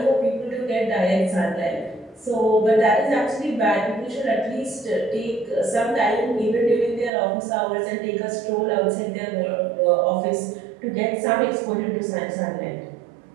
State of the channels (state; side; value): drops out; left; at 7.1 s